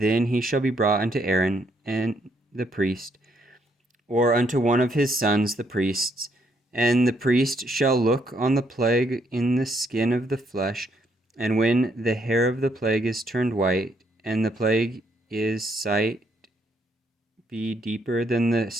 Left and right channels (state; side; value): normal; both; correlation 0.72